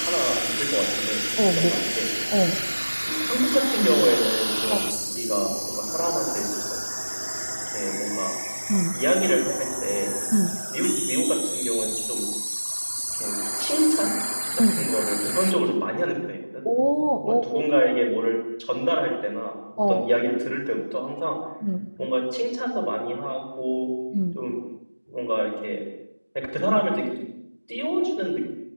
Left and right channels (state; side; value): inverted; both; correlation -1.00